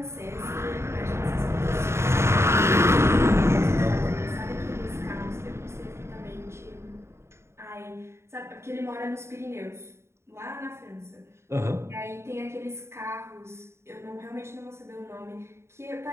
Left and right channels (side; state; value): left; late; 0.13 ms